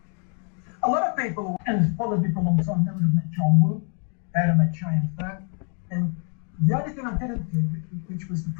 A lot of people, and followed me for a long time, never have met John Woo, they have met Cheyenne Fat. And the only thing I didn't do, which was the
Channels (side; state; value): right; quieter; 40.0 dB